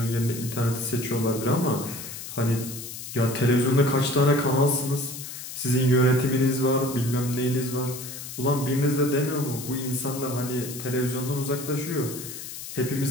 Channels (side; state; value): left; noise; hiss, 10 dB below the sound